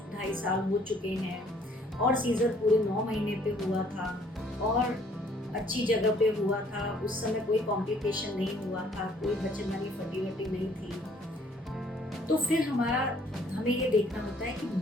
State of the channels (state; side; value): normal; both; correlation 0.61